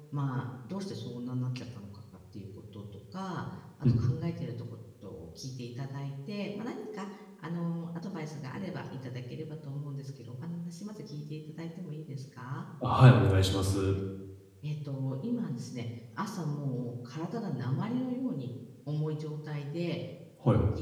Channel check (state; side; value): identical; both; correlation 1.00